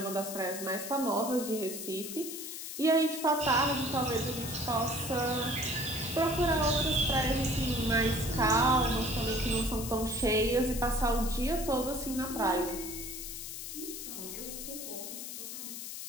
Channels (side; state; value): left; noise; hiss, 8 dB below the sound